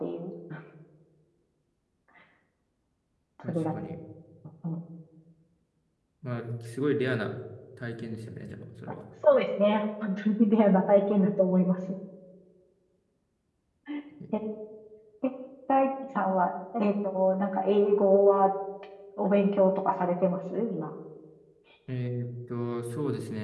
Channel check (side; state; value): both; identical; correlation 1.00